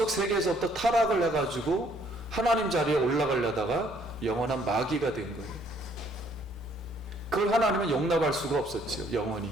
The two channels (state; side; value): normal; both; correlation 0.64